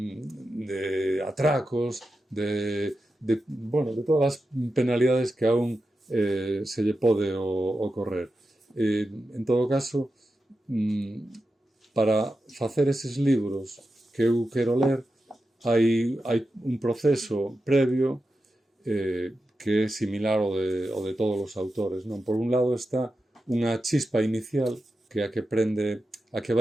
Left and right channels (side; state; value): both; normal; correlation 0.90